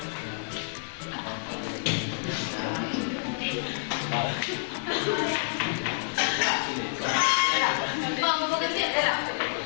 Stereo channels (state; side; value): silent; right; digital silence